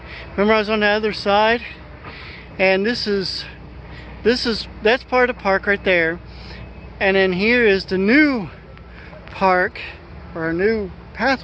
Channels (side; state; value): both; identical; correlation 1.00